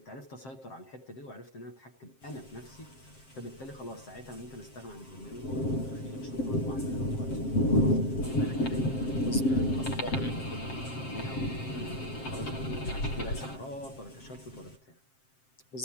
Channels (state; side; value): late; right; 7.6 ms